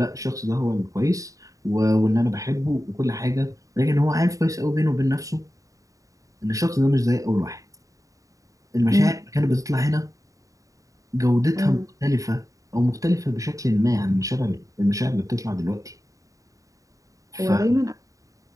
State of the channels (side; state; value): left; late; 0.16 ms